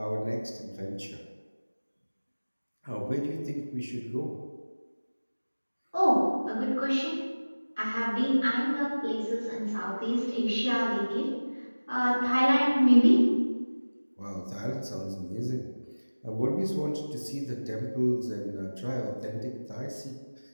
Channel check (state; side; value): inverted; both; correlation -1.00